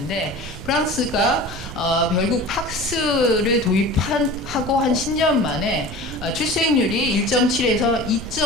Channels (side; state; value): both; normal; correlation 0.37